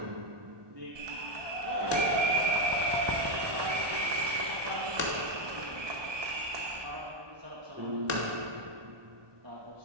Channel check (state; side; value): late; left; 1.2 ms